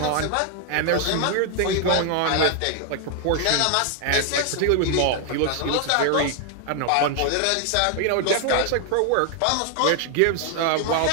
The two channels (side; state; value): both; different; correlation 0.00